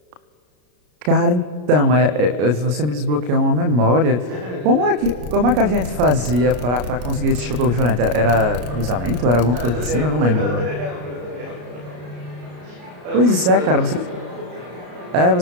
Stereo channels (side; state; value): left; late; 33 ms